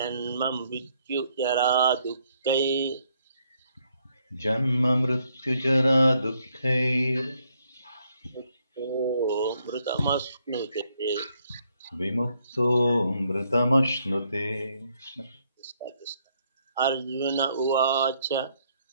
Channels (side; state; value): both; inverted; correlation -0.72